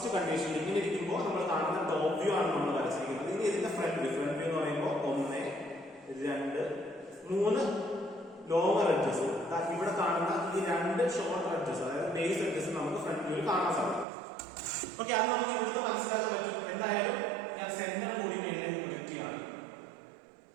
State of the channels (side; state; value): left; drops out; at 14.1 s